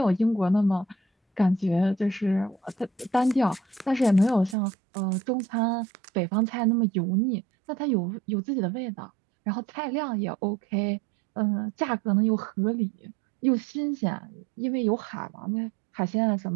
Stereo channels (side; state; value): left; drops out; at 4.5 s